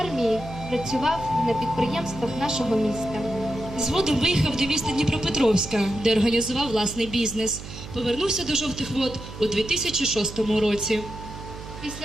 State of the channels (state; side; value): noise; right; hum, 12 dB below the sound